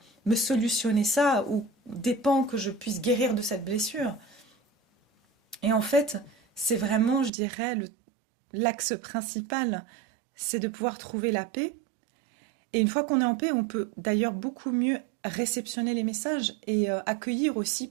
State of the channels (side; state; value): left; drops out; at 7.3 s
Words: me solutionner ça, ou dépend que je puisse guérir de cette blessure. Et en fait, c'est vraiment, je dirais, l'axe principal, c'est de pouvoir trouver la paix. Et une fois qu'on est en paix, on peut d'ailleurs beaucoup mieux réceptionner les messages et accueillir aussi